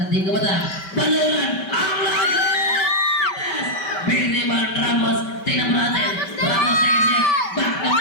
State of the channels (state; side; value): late; right; 5.2 ms